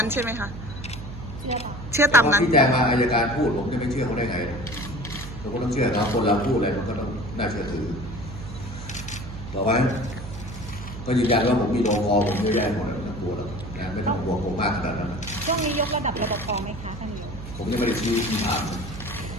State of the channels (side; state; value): right; noise; hum, 11 dB below the sound